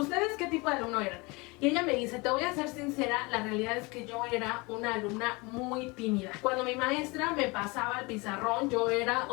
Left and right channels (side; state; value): right; quieter; 26.2 dB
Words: qué tipo de alumno eran? Y ella me dice, te voy a ser sincera, la realidad es que yo era una alumna muy tímida. Cuando mi maestra me pasaba el pizarrón, yo era,